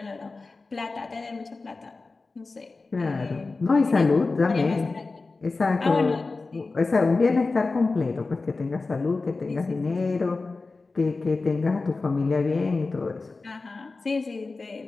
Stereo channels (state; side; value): quieter; right; 3.8 dB